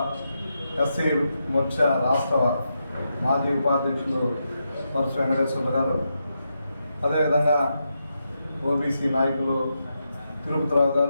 ఎస్సీ మోర్చా రాష్ట్ర మాజీ ఉపాధ్యక్షులు పరశు వెంకటేశ్వర గారు, అదేవిధంగా ఓబీసీ నాయకులు తిరుపతిరావు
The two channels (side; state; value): both; inverted; correlation -0.85